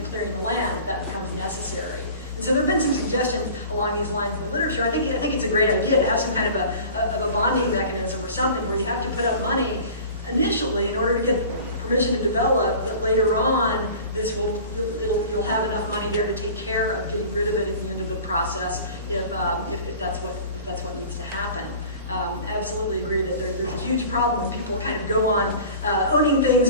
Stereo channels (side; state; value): both; inverted; correlation -0.41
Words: clearing the land if that becomes necessary. And so there have been some suggestions along these lines in the literature. I think it's a great idea to have some kind of a bonding mechanism or something where you have to put up money initially in order to get permission to develop, that later on you'll have enough money there to take care of getting rid of it at the end of the process if that's what needs to happen. Absolutely agree that there's a huge huge problem when people kind of go on owning things